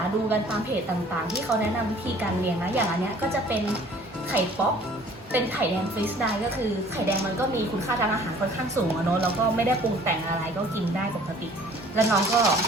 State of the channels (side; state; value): both; normal; correlation 0.53